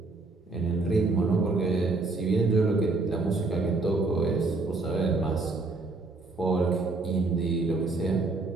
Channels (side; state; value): left; quieter; 3.5 dB